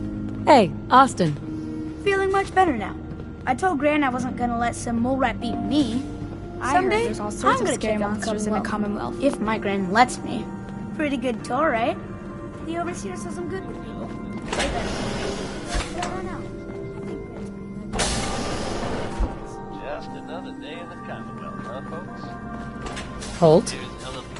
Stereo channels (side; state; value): both; identical; correlation 1.00